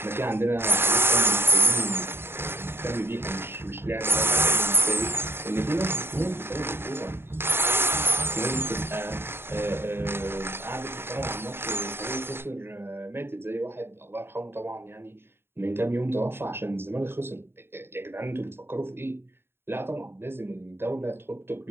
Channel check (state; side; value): late; left; 0.11 ms